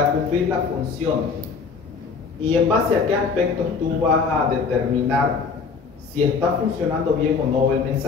cumplir la función, y en base a qué aspectos tú vas a determinar si está funcionando bien o no el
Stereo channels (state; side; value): quieter; right; 5.1 dB